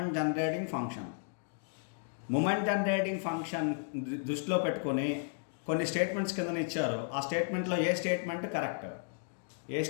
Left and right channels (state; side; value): silent; right; digital silence